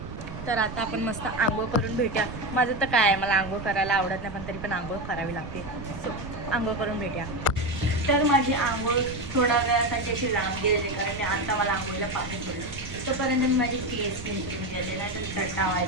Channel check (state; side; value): noise; right; rumble, 11 dB below the sound